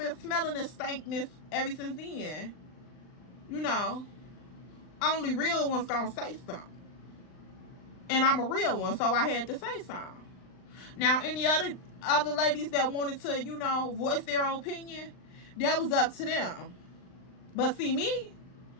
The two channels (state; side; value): late; right; 39 ms